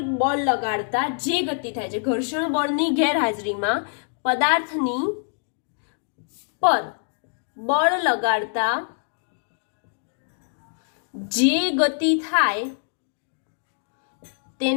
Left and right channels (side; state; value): right; silent; digital silence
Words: બળ લગાડતા જે ગતિ થાય છે, ઘર્ષણ બળની ગેરહાજરીમાં પદાર્થની પર બળ લગાડતા જે ગતિ થાય